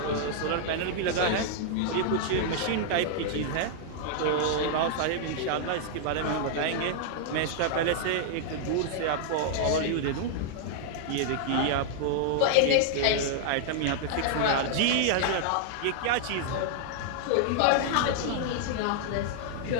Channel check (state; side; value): different; both; correlation -0.01